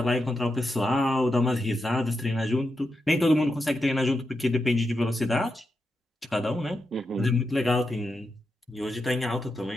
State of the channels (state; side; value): normal; both; correlation 0.86